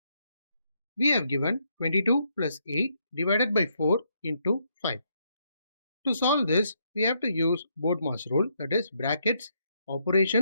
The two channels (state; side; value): inverted; both; correlation -0.75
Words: We have given 22 plus 8 divided by 4 into 5. To solve this, we have to use BODMAS rule, that is brackets,